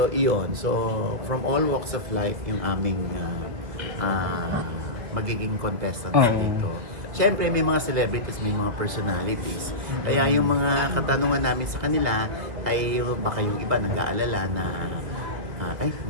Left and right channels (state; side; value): late; left; 2.0 ms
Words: iyon. So from all walks of life, yung aming magiging contestants dito. Siyempre, may mga celebrities, may mga personalities. Kaya yung mga katanungan namin sa kanila ay baka yung iba nag-aalala na